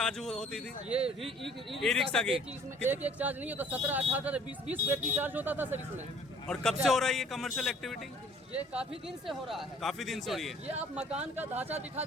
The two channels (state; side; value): normal; both; correlation 0.55